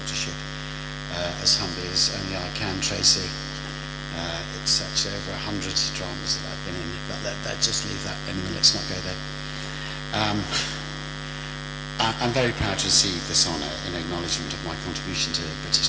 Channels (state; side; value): identical; both; correlation 1.00